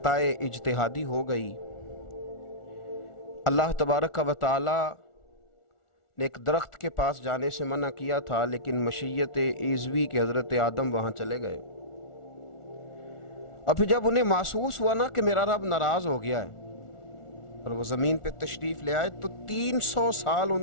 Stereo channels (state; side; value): late; right; 1.4 ms